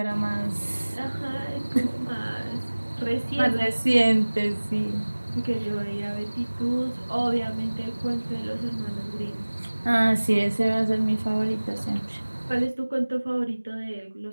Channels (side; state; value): both; inverted; correlation -1.00